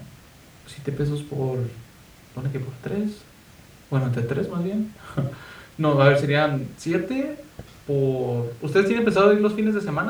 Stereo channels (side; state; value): both; identical; correlation 1.00